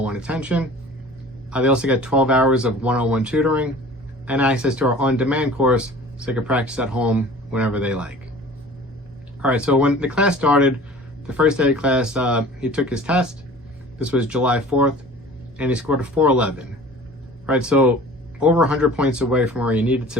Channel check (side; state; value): both; normal; correlation 0.44